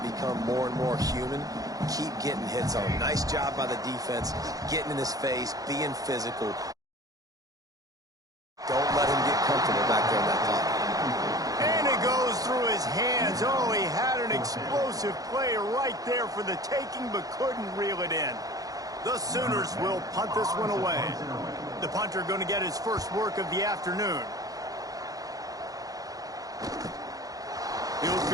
more and more human. Keep getting hits on him. Nice job by the defense, getting in his face, being physical. Don't let him get comfortable back there in that pocket. And it goes through his hands. Oh, he had an explosive play right there for the taking, but couldn't reel it in. The Sooners will punt this one away. The punter going to get his first work of the afternoon. He'll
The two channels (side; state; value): left; late; 0.17 ms